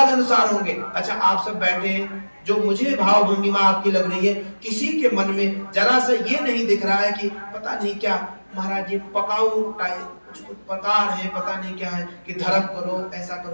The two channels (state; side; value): inverted; both; correlation -1.00